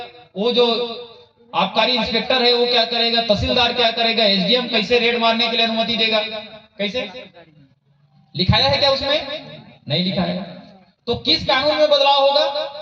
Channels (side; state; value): both; identical; correlation 1.00